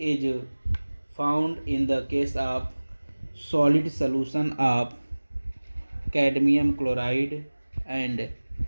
found in the case of solid solution of cadmium chloride and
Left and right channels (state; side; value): inverted; both; correlation -1.00